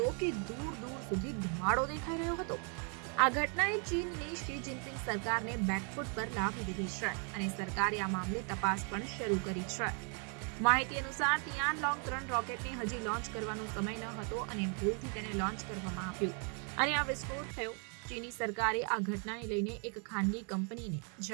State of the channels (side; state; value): left; quieter; 39.5 dB